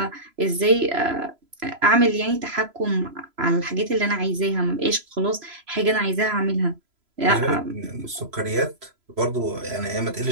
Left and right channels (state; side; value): late; left; 3.0 ms